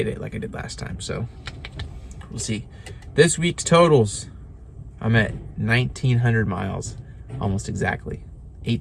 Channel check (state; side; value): identical; both; correlation 1.00